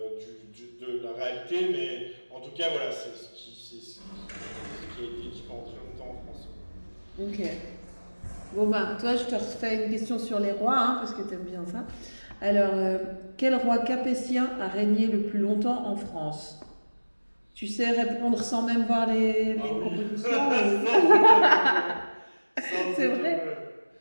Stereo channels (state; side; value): inverted; both; correlation -1.00